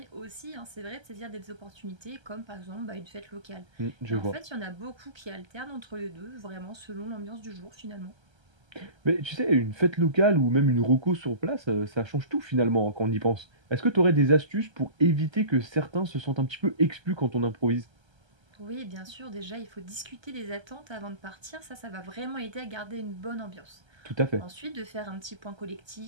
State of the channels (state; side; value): late; left; 1.3 ms